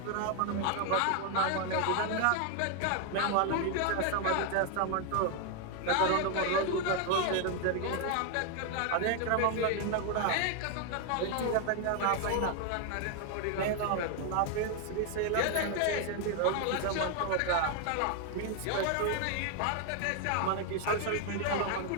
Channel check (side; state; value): both; different; correlation 0.01